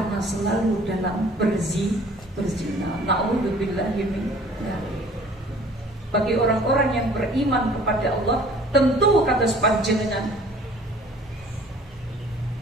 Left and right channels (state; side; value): normal; both; correlation 0.52